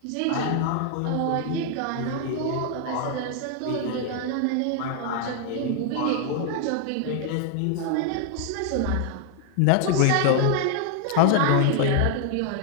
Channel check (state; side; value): different; both; correlation 0.00